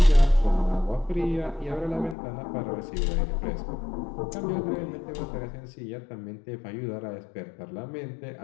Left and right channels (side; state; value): right; drops out; at 2.1 s